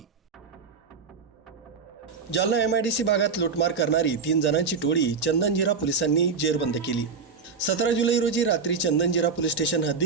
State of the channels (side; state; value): left; quieter; 5.2 dB